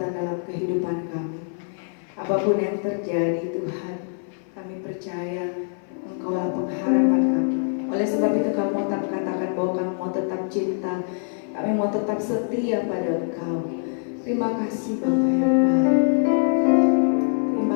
dalam kehidupan kami. Apapun yang terjadi Tuhan, kami percaya Engkaulah pengharapan kami. Oleh sebab itu kami mau tetap katakan bahwa kami mau tetap cinta, kami mau tetap setia pada Engkau. Terima kasih Bapa yang baik.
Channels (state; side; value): silent; right; 58 dB below the other